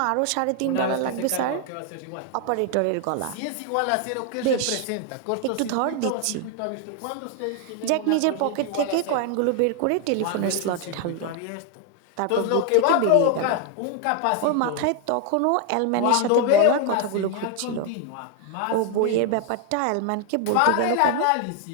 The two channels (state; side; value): different; both; correlation 0.00